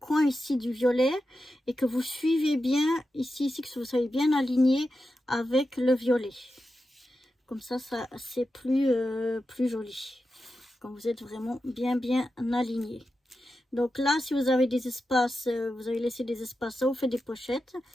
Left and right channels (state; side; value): normal; both; correlation 0.90